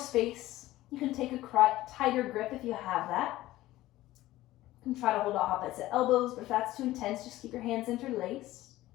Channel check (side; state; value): right; quieter; 16.3 dB